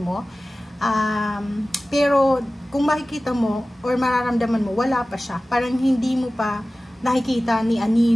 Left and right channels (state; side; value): normal; both; correlation 0.97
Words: Pero, kung makikita mo or mararamdaman mo, wala pa siya. Parang hindi mo pa nakikita ni